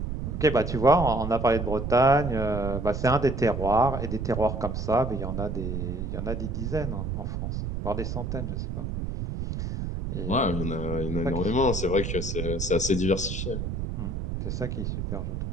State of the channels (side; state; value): right; noise; rumble, 3 dB below the sound